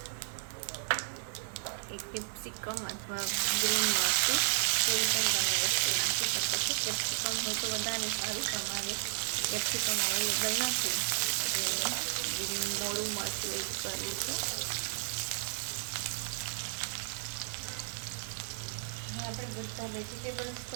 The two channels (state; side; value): silent; left; 55 dB below the other